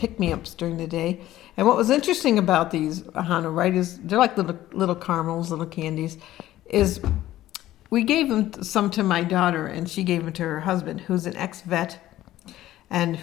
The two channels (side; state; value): right; quieter; 14.5 dB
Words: during the day. And what was interesting about these, Ahonu, right, is they're like little caramels, little candies, is we gave them some to my daughter, and she gave them to her husband, who's an ex-vet, and